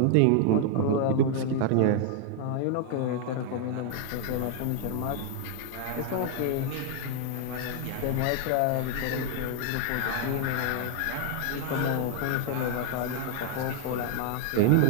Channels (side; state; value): both; different; correlation 0.00